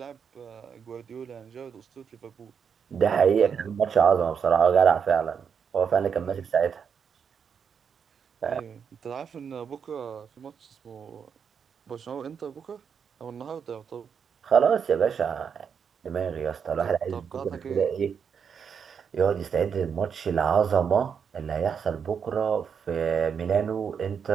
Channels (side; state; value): left; quieter; 6.9 dB